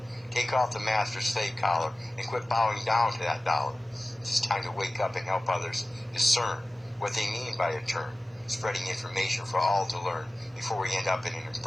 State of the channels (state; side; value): normal; both; correlation 0.96